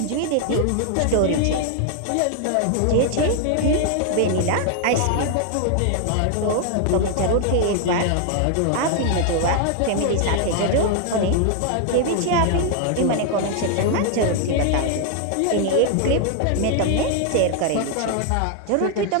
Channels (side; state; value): both; different; correlation 0.00